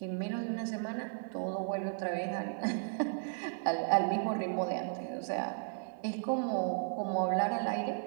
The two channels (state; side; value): silent; left; 55 dB below the other